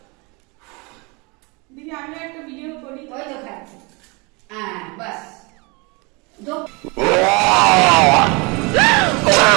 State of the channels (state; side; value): quieter; left; 28.7 dB